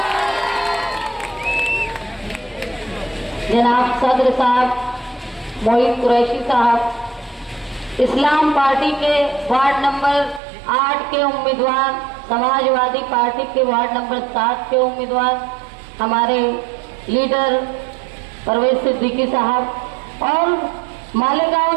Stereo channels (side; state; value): left; drops out; at 10.4 s